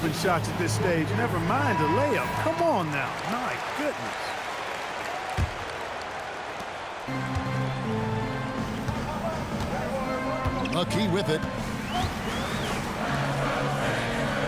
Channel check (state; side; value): identical; both; correlation 1.00